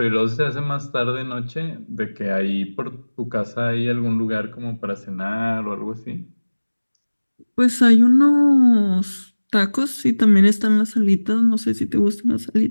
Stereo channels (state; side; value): inverted; both; correlation -1.00